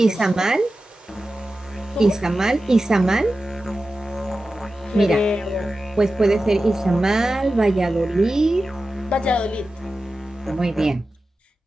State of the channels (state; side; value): normal; both; correlation 0.94